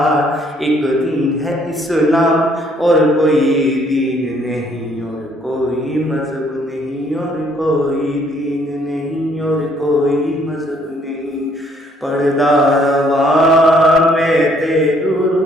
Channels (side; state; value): both; normal; correlation 0.65